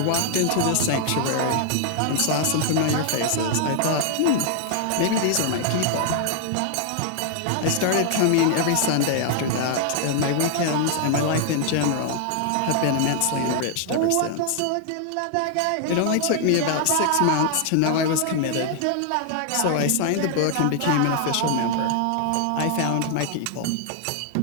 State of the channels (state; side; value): different; both; correlation 0.00